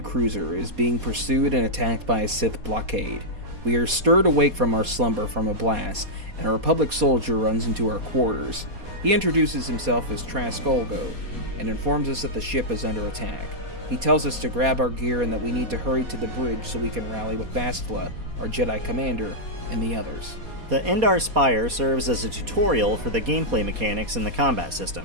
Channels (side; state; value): left; late; 4.2 ms